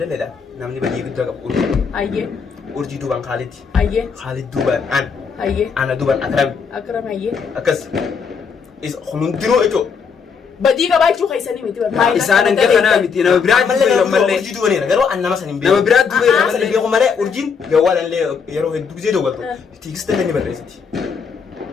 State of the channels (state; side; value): quieter; right; 6.0 dB